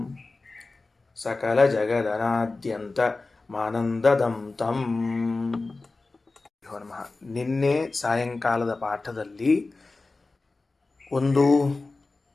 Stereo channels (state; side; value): quieter; right; 3.5 dB